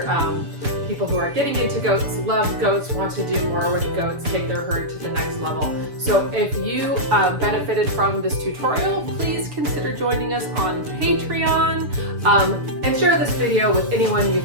people who are getting into goats, love goats, want to do more with goats, take their herd to the next level. So if you benefited from this tutorial, please consider joining us on Patreon and share this video with anyone you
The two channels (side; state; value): left; late; 6.9 ms